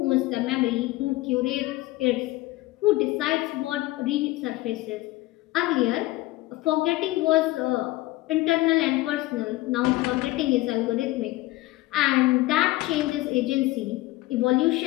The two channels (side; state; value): right; quieter; 18.8 dB